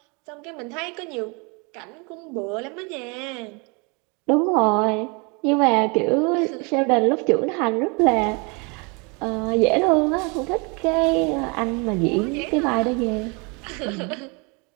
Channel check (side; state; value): left; quieter; 31.3 dB